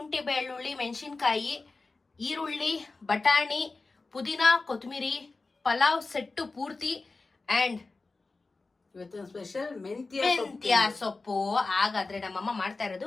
ಬೆಳ್ಳುಳ್ಳಿ, ಮೆಣಸಿನ್ಕಾಯಿ, ಈರುಳ್ಳಿ, ಬಟಾಣಿ, ಪುದೀನ, ಕೊತ್ತಂಬರಿ, ಪಲಾವ್ ಸೆಟ್ಟು ಪೂರ್ತಿ ಅಂಡ್ ಇವತ್ತು ಸ್ಪೆಷಲ್ ಮೆಂತ್ಯ ಸೊಪ್ಪು. ಹಾಗಾದ್ರೆ ನಮ್ಮಮ್ಮ ಮಾಡ್ತಾ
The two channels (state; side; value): quieter; right; 3.7 dB